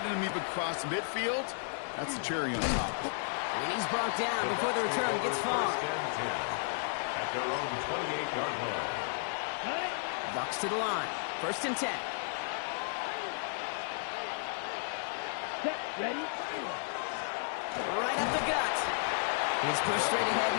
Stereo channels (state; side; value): silent; right; digital silence